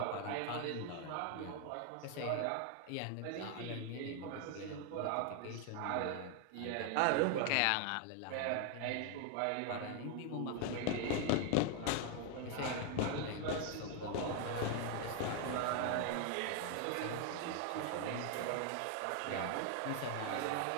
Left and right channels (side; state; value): both; different; correlation 0.01